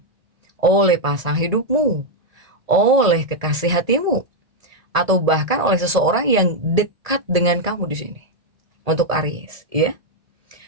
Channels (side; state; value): left; late; 1.7 ms